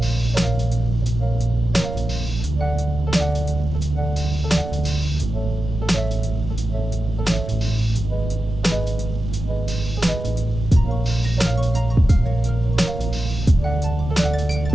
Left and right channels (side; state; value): right; noise; rumble, 7 dB below the sound